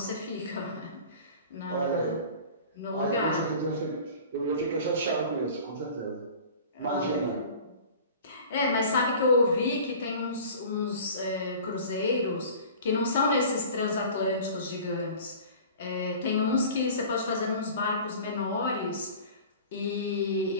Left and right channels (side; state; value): both; inverted; correlation -0.42